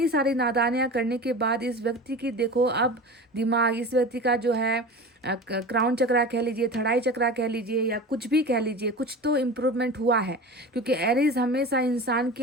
सारी नादानियाँ करने के बाद इस व्यक्ति की देखो अब दिमाग, इस व्यक्ति का जो है क्राउन चक्रा कह लीजिए, थर्ड आई चक्रा कह लीजिए, या कुछ भी कह लीजिए, कुछ तो इम्प्रूवमेंट हुआ है। क्योंकि एरीज हमेशा इंसान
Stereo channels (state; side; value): normal; both; correlation 0.33